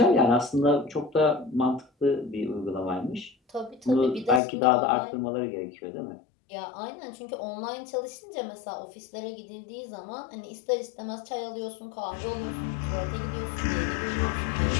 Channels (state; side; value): drops out; right; at 4.4 s